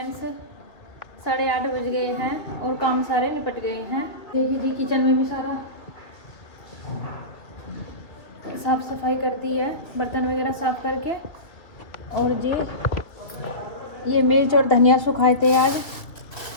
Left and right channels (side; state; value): right; late; 2.7 ms